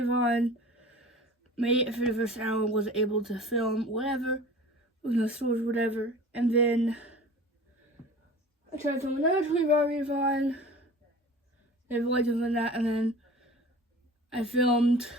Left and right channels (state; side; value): normal; both; correlation 0.40